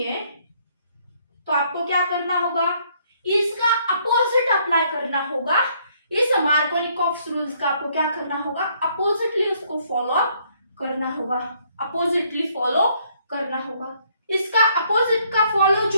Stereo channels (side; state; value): both; inverted; correlation -0.67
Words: तो आपको क्या करना होगा, इसका अपोजिट अप्लाई करना होगा। इस मार्कोनिकॉफ रूल्स का आपको क्या करना होगा, अपोजिटली उसको फॉलो करना होगा, अपोजिटली फॉलो करना होगा। इसका अपोजिट का फॉलो